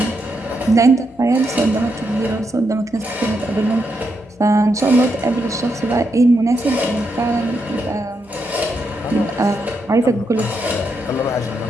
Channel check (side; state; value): both; normal; correlation 0.81